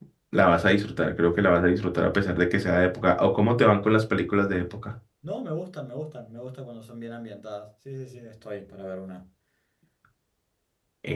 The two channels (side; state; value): both; identical; correlation 1.00